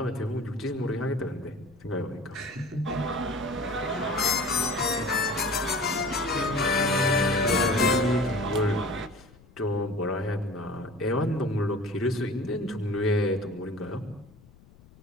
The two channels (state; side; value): noise; left; rumble, 25 dB below the sound